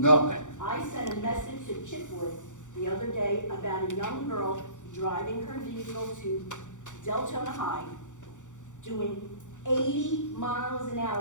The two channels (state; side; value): late; right; 0.86 ms